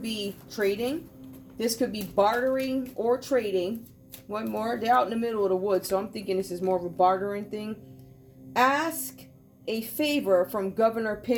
be trading. This could be bartering or trading. One more. They're out in the middle of the woods, so I'm thinking this is more of a bartering thing. Ask a favor from Governor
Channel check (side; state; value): both; identical; correlation 1.00